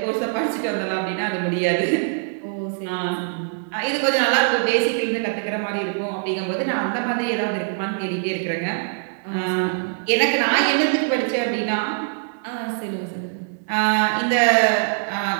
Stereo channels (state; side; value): silent; left; digital silence